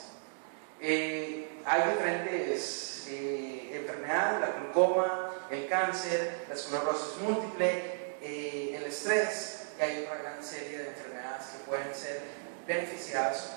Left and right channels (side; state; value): left; silent; digital silence